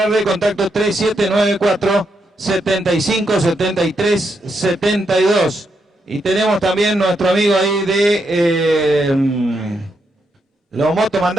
de contacto 3794-757372. Y tenemos también nuestro amigo ahí de los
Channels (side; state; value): both; normal; correlation 0.81